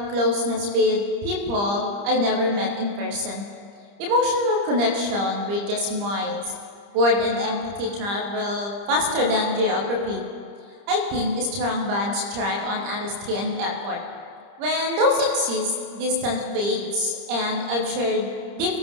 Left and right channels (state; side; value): late; left; 30 ms